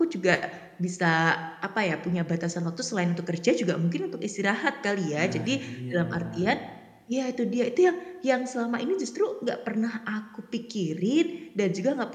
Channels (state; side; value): identical; both; correlation 1.00